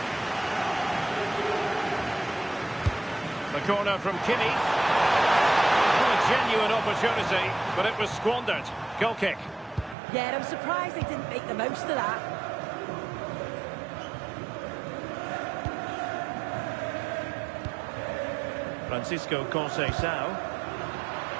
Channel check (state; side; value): drops out; left; at 10.0 s